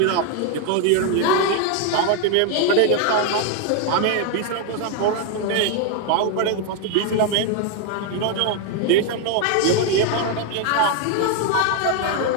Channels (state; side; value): different; both; correlation 0.01